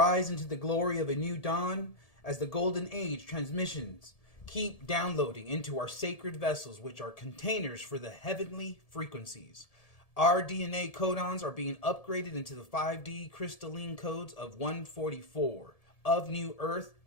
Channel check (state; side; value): late; right; 1.7 ms